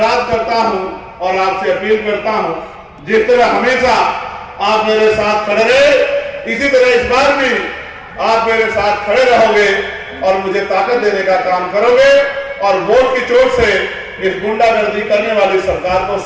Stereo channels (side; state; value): both; identical; correlation 1.00